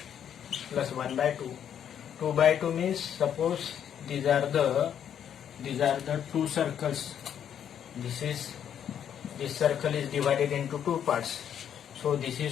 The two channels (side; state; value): right; quieter; 9.1 dB